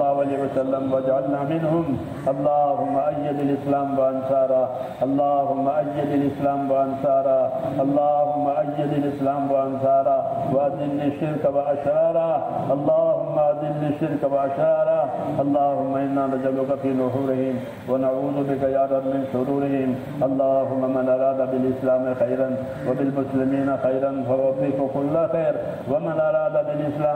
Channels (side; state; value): both; identical; correlation 1.00